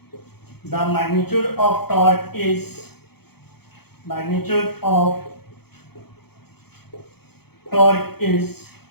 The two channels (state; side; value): late; right; 0.96 ms